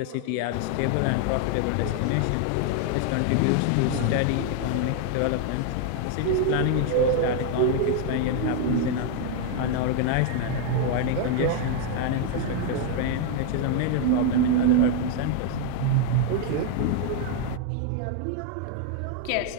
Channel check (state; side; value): different; both; correlation 0.00